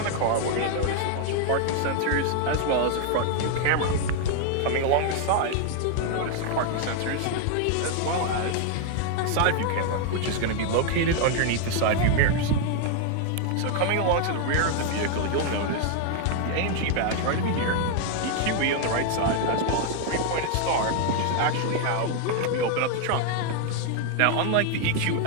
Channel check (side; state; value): both; different; correlation 0.00